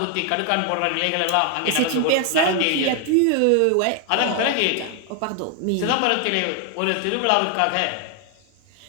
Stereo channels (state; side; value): different; both; correlation 0.01